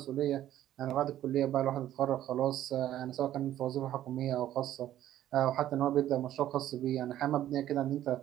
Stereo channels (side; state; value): left; quieter; 12.5 dB